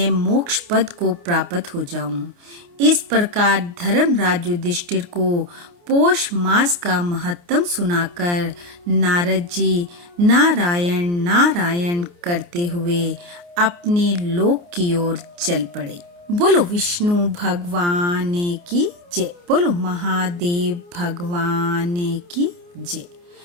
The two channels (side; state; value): left; late; 29 ms